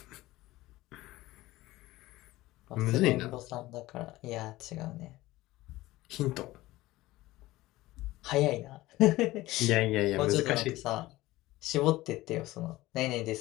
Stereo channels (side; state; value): right; quieter; 17.8 dB